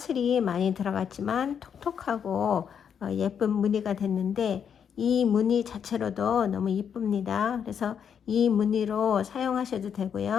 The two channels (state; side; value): quieter; right; 7.7 dB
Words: 많이 들어갔지만 톡톡하고 예쁜 무늬가 됐는데, 이 무늬 자체로도 너무 이쁩니다. 그래서 이 무늬로 사용하셔도